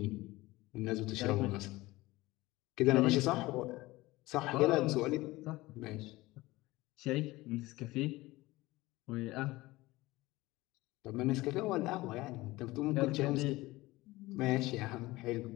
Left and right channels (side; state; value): right; quieter; 19.6 dB